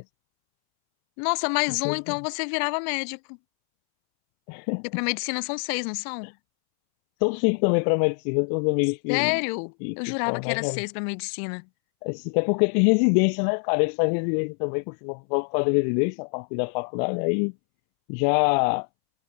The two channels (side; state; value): right; silent; 62 dB below the other